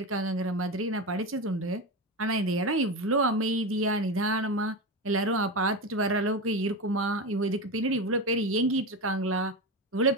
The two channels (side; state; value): both; normal; correlation 0.19